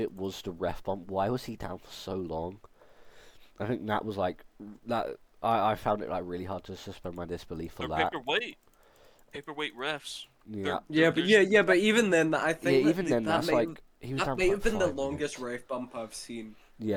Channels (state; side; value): identical; both; correlation 1.00